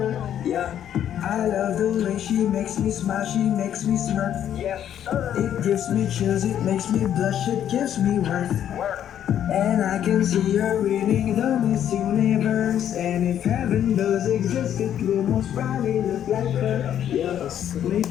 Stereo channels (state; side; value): quieter; right; 10.2 dB